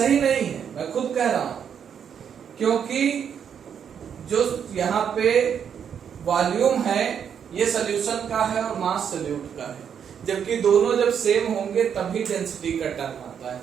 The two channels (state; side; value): quieter; left; 7.9 dB